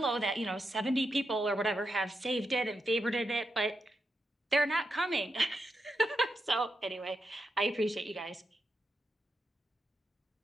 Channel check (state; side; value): normal; both; correlation 0.85